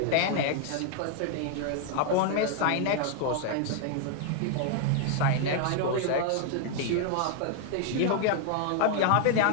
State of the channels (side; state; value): both; different; correlation 0.00